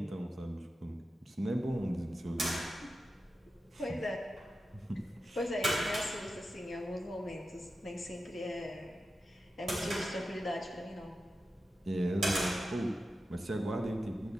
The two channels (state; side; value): normal; both; correlation 0.91